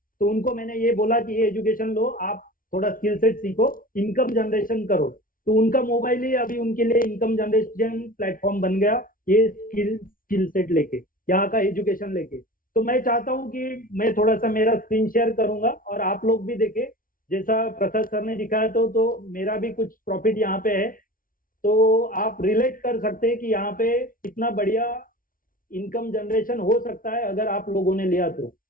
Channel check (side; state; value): right; late; 0.40 ms